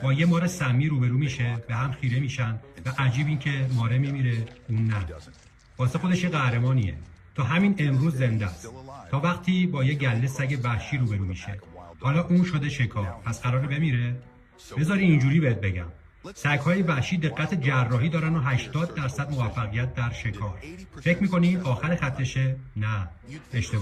با یه مار سمی روبرو میشه، به هم خیره میشن و عجیب این که ماره میمیره اون نه. واسه خودش یه قهرمانیه. تا همین امروز زنده است. تا وقتی با یه گله سگ وحشی روبرو میشه. حالا اون شده شکار، پس قراره بمیره؟ بذاری اینجوری بهت بگم. سگ‌های وحشی دقت جراحی دارن و 80% موفقیت در شکار. فکر می‌کنی آخر خطشه؟ نه،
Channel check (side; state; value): both; identical; correlation 1.00